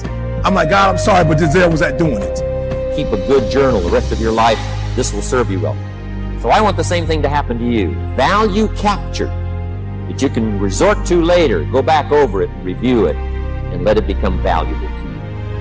I'm like, God, I'm sorry, but Denzel was at doing it. Keep a good journal the rest of your life. This will serve you well. So I want the same thing to happen to you. Value capture that you can resort to later. Go back over it and review it and let it become valuable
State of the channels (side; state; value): both; identical; correlation 1.00